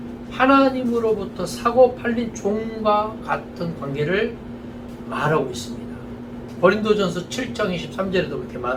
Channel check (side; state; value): both; identical; correlation 1.00